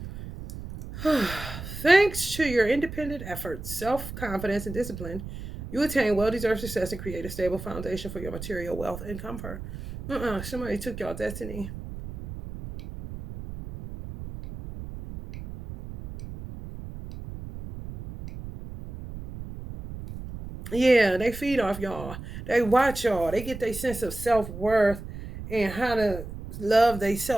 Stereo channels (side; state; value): right; noise; rumble, 10 dB below the sound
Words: Thanks to your independent efforts, self-confidence, and discipline, you attain well-deserved success and create a stable foundation for your material wealth and comfort. Somebody took y'all destiny. Yeah, they feed off y'all. They watch y'all. They get their sense of self-worth and how to love